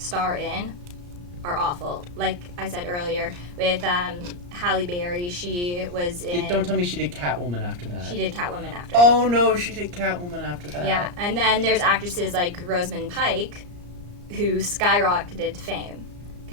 in are awful. Like I said earlier, with Halle Berry, she was in... Don't tell me she did Catwoman after that. She did Catwoman after Oh, no, she did Catwoman after that. Yeah, and then there's actresses like Rosamund Pike, who skyrocketed to fame.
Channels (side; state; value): left; late; 34 ms